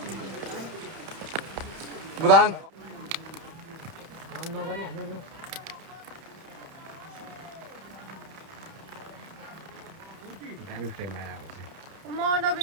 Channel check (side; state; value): left; late; 31 ms